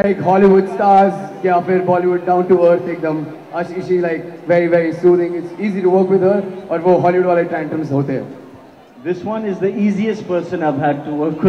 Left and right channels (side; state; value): both; identical; correlation 1.00